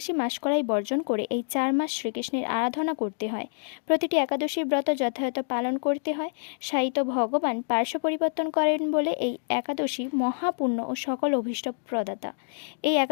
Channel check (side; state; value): right; silent; digital silence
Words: মাসকলাই বর্জন করে এই 4 মাস শ্রীকৃষ্ণের আরাধনা করতে হয়। প্রতিটি একাদশীর ব্রত যথাযথ পালন করতে হয়। সাহিত্য ভগবান পার্শ্ব পরিবর্তন করেন বলে এই একাদশী মহাপুণ্য ও সকল অভীষ্ট প্রদাতা। এই